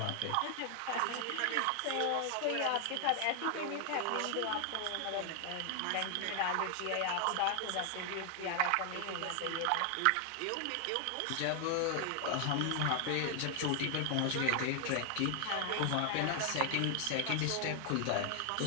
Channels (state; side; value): different; both; correlation 0.00